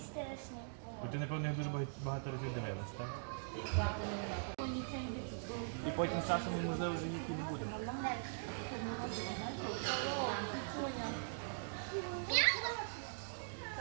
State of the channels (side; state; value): left; silent; digital silence